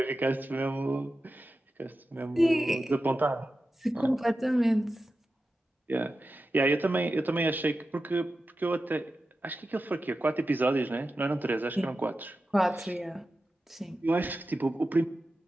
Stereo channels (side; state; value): both; normal; correlation 0.92